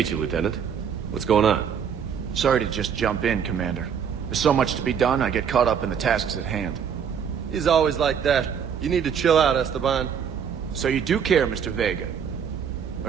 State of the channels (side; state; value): left; quieter; 7.6 dB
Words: you, Lieutenant. What's going on? Sorry to just jump in, Commander. There's so much to be done, I get caught up in the tasks at hand. He's always like that. You need to chill out, Esteban. So you do care, Mr. Vega?